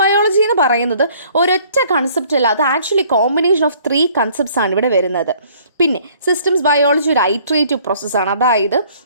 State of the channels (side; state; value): both; inverted; correlation -0.58